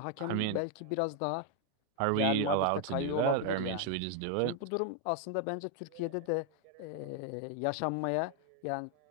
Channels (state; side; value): different; both; correlation 0.00